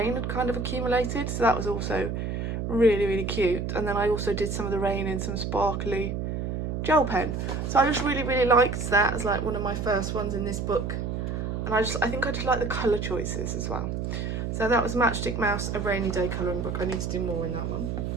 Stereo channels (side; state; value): right; noise; hum, 3 dB below the sound